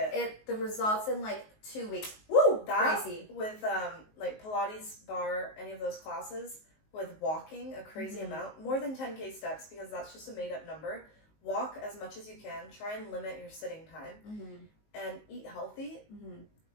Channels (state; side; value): late; right; 19 ms